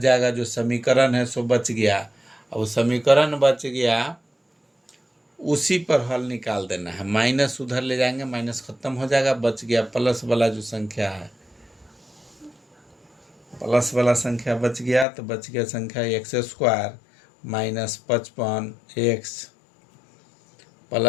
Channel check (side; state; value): right; drops out; at 15.1 s